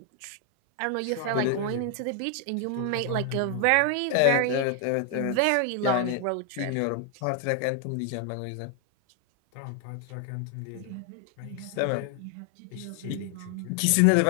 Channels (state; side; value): different; both; correlation 0.00